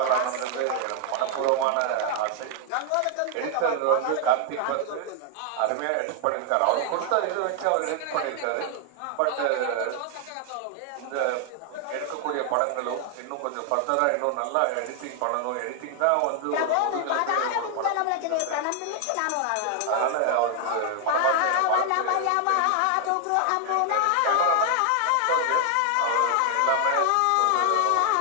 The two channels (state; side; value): different; both; correlation 0.00